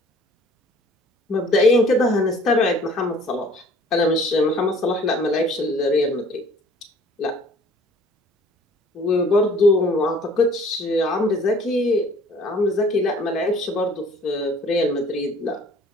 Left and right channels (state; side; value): normal; both; correlation 0.53